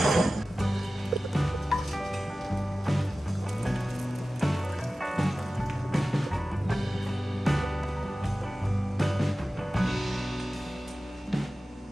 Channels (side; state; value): both; normal; correlation 0.96